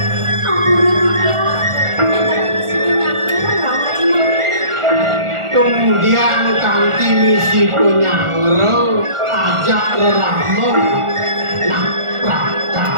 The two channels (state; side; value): late; left; 1.4 ms